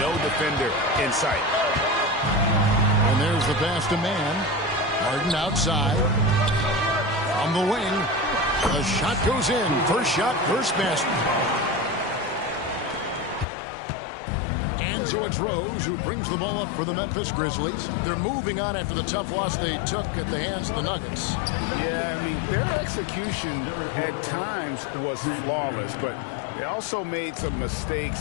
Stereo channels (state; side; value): drops out; right; at 13.5 s